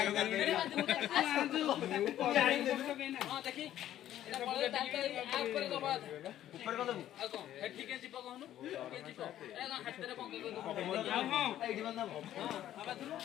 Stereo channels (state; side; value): quieter; right; 12.2 dB